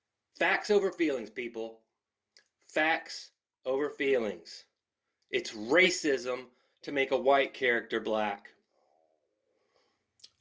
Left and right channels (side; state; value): both; identical; correlation 1.00